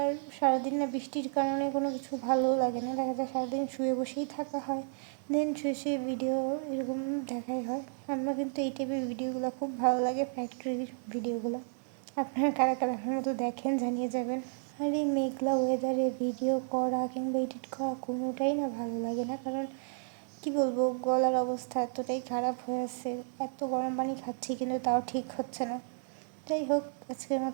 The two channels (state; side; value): silent; left; 56 dB below the other